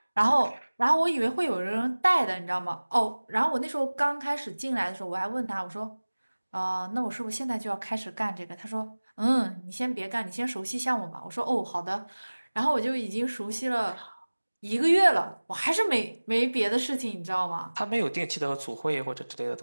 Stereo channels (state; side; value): inverted; both; correlation -1.00